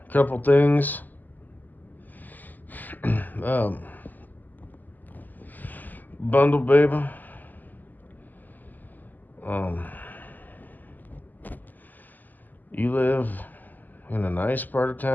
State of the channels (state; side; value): late; right; 0.085 ms